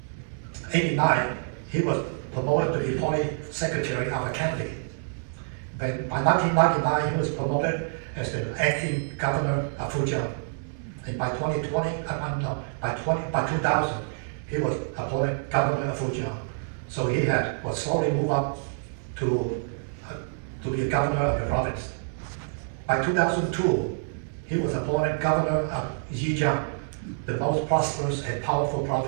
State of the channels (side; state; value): left; silent; digital silence